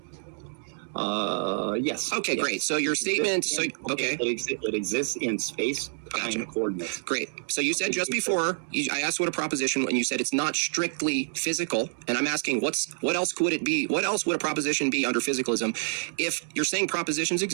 Yes. Okay, yes. Great. So your statement, okay. It exists in space, time, coordinates. Great. So you said just before, I asked what a proposition, and you said it's not strictly physical, and I'm asking what else could it be? What else would a proposition be under physicalism? If you're saying propositions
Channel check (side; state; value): left; silent; digital silence